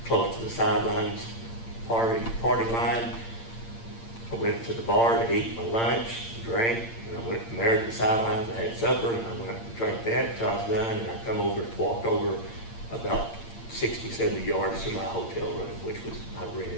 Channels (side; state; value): right; late; 8.7 ms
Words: close to the sidelines, party line. I went to the bar to eat my lunch, drank, and I went from there to the sidelines. I had supper, and I went and drank that until I was done, and I come over, walked over about 60, 70 yards to my hotel room, which was I